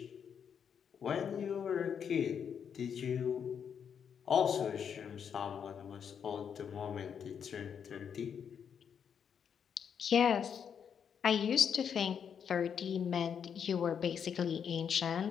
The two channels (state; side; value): quieter; right; 7.6 dB